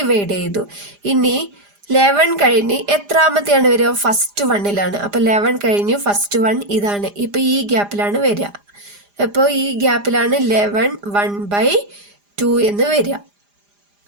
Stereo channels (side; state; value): left; late; 4.9 ms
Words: ചെയ്തു. ഇനി 11 കഴിഞ്ഞ് എത്രാമത്തെയാണ് വരിക? ഫസ്റ്റ് 1ലാണ്. അപ്പൊ 11 കഴിഞ്ഞു ഫസ്റ്റ് 1 ഇതാണ്. ഇപ്പൊ ഈ ഗ്യാപ്പിലാണ് വരിക. അപ്പോൾ ഈ ഗ്യാപ്പിലാണ് 11 1/2 എന്ന് വരിക.